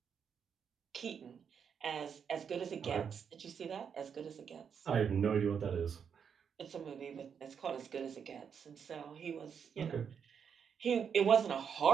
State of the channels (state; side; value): quieter; left; 7.1 dB